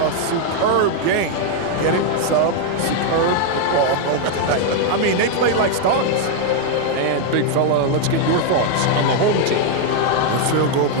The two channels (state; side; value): different; both; correlation 0.00